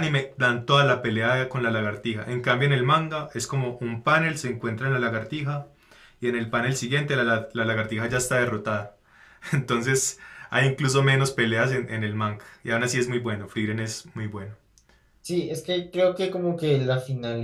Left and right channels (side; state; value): both; identical; correlation 1.00